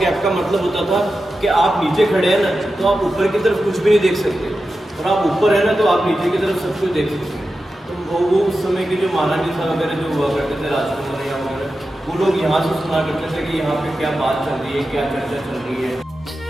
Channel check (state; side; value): normal; both; correlation 0.91